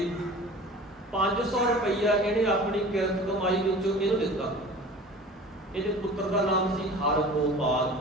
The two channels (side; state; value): both; normal; correlation 0.40